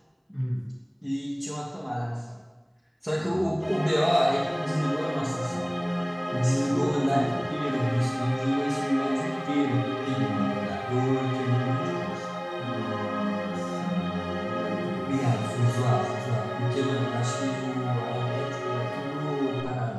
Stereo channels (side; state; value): both; identical; correlation 1.00